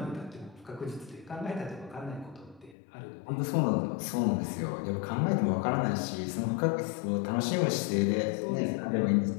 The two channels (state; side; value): drops out; right; at 2.8 s